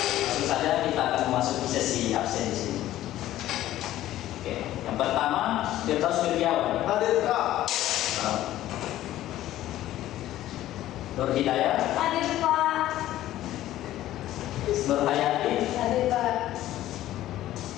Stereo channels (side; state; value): right; quieter; 14.0 dB